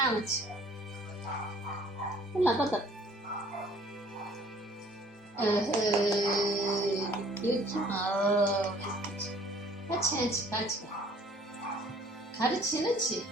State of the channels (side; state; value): both; normal; correlation 0.55